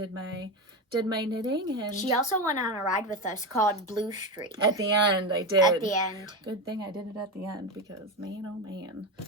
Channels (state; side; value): normal; both; correlation 0.16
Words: my knitting. And She also went on a ride with us called Blue Street. at the end, I did. At the end. Good thing I did it at the end because man, oh man.